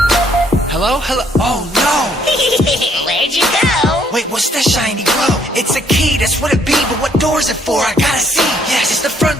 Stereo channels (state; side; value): normal; both; correlation 0.66